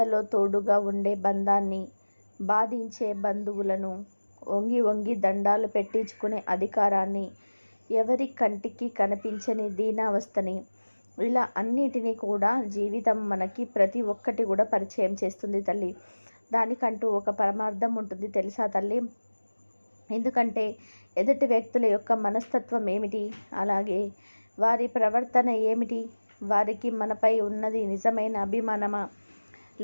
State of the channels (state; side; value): inverted; both; correlation -1.00